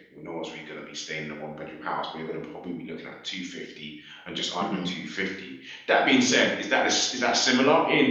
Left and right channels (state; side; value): identical; both; correlation 1.00